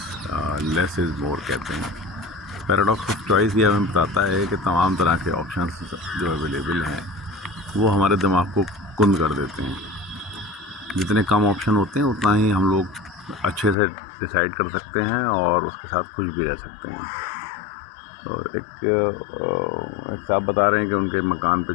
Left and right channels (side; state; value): right; drops out; at 13.8 s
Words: Less is more कहते हैं। पैराडॉक्स ऑफ चॉइस ये हमें बताता है कि तमाम तरह के ऑप्शंस जो अवेलेबल हैं वो हमारे दिमाग को कुंद कर देते हैं। जितने कम ऑप्शन होते हैं उतना ही हम लोग अच्छे से डिसाइड कर सकते हैं और उसके साथ खुश भी रह सकते हैं। तो एक साहब बता रहे हैं कि उनके मकान पे